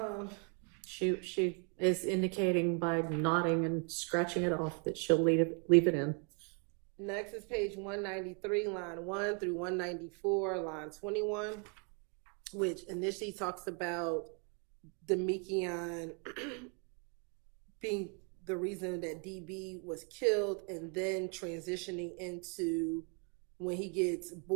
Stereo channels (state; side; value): quieter; left; 38.2 dB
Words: She is indicating by nodding and scratching it off that she'll leave it in. Next is page 193, line 1 through 194, line 21, which initially talks about Demekion being the reason that DB was killed, and then transitioning into when he gets